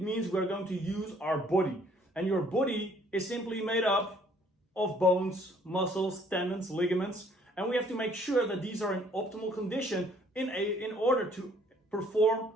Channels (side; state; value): both; normal; correlation 0.61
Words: means we're going to use our body, and your body is simply made up of bones, muscles, tendons, ligaments, and we have to make sure that these are in optimal condition in order to perform